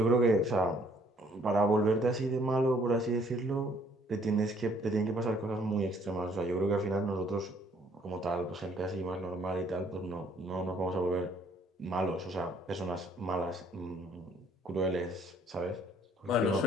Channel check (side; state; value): both; normal; correlation 0.62